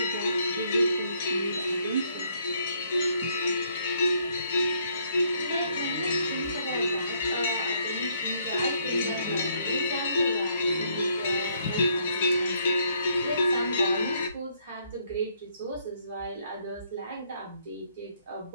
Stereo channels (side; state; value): both; inverted; correlation -0.70